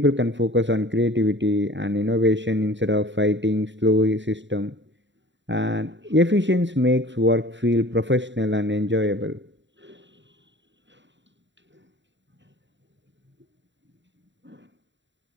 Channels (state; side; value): late; left; 0.53 ms